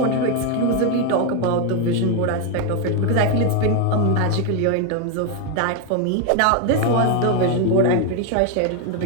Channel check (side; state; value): both; different; correlation 0.01